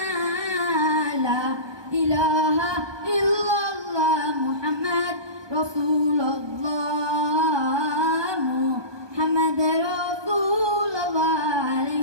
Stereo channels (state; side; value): late; left; 1.2 ms